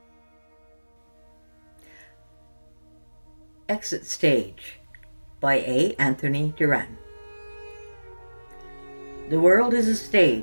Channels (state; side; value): inverted; both; correlation -1.00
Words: Exit Stage by A. Anthony Duran. The world is a